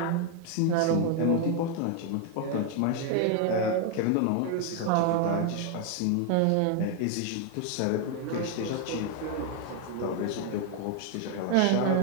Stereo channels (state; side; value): different; both; correlation 0.01